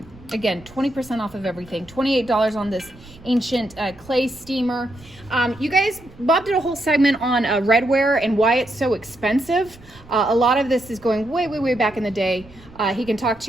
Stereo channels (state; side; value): noise; right; rumble, 22 dB below the sound